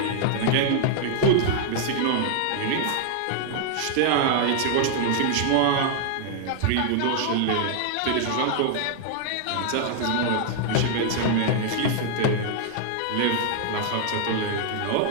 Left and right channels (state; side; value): different; both; correlation -0.01